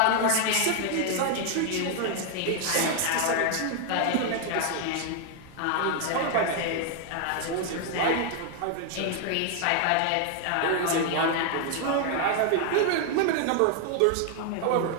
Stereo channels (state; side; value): different; both; correlation 0.00